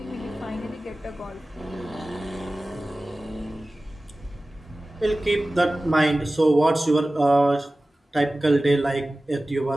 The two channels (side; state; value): both; normal; correlation 0.97